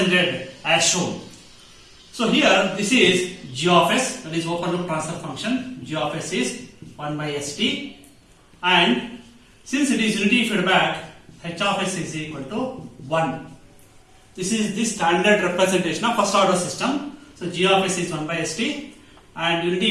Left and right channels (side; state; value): both; identical; correlation 1.00